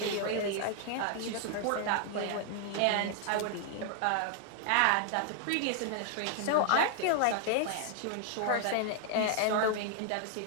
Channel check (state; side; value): different; both; correlation 0.00